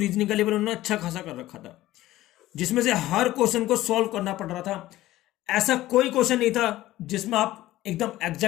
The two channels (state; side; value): quieter; right; 15.8 dB